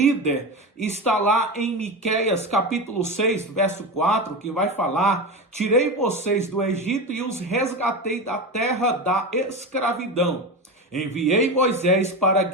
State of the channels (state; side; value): normal; both; correlation 0.22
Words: Está lá em Miqueias capítulo 6, verso 4, que vai falar: tirei vocês do Egito e os resgatei da terra da escravidão. Enviei Moisés para